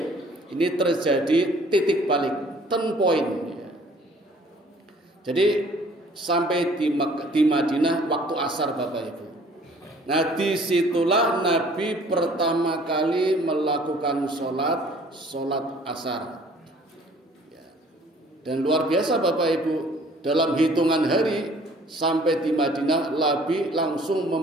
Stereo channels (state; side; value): normal; both; correlation 0.55